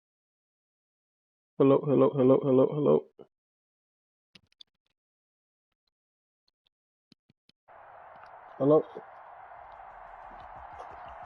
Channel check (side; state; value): both; identical; correlation 1.00